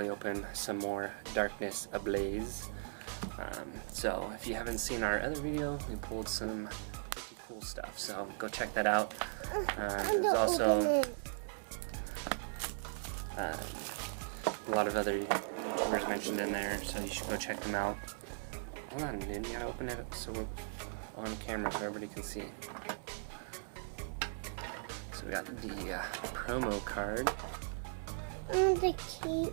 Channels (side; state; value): left; silent; digital silence